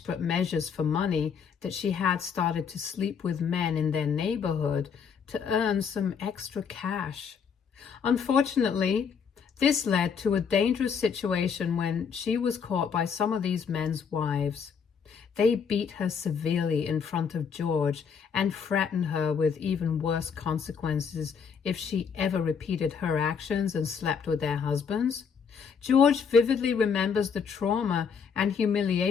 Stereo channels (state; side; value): quieter; right; 6.5 dB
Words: measures for money that she had started to sleep with men in their neighborhood to earn some extra cash. Unfortunately, this led to a dangerous situation when she was caught by some of these men's wives. They beat her severely in front of George and threatened her with even worse consequences if she ever repeated her actions and slept with their husbands. George vividly remembers the trauma and